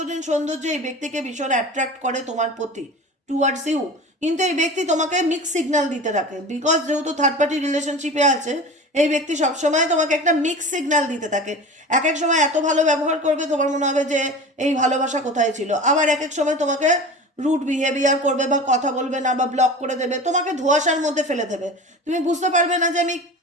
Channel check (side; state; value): both; normal; correlation 0.34